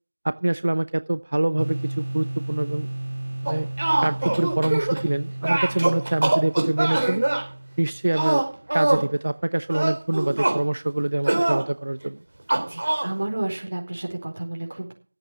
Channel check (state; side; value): inverted; both; correlation -1.00